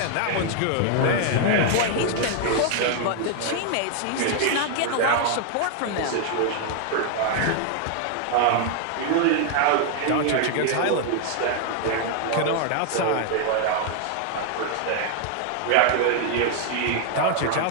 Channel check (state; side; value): different; both; correlation 0.00